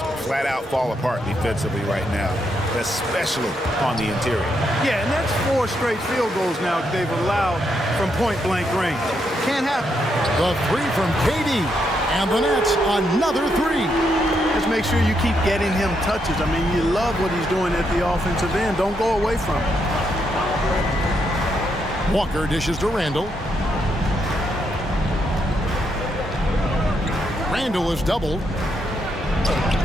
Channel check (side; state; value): both; normal; correlation 0.79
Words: flat out fall apart defensively right now, especially on the interior. Yeah, and that's 4 straight field goals now they've allowed from point-blank range. Can't happen. The 3 from KD. And the Nets, another 3. Just make sure you keep getting him touches. I mean, you love what he's doing at the offensive end. Don't go away from him. Walker dishes to Randall. Randall is doubled.